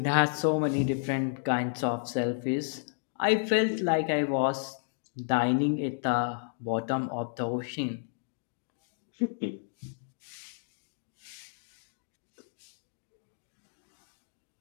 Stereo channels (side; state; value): right; silent; digital silence